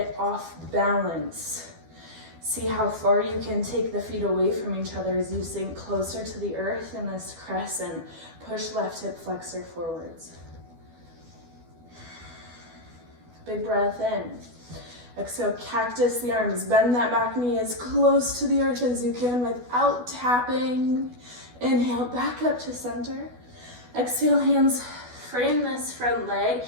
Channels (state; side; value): late; left; 12 ms